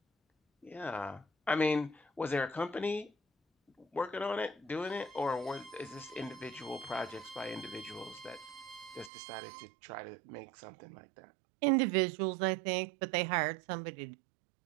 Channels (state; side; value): drops out; left; at 9.1 s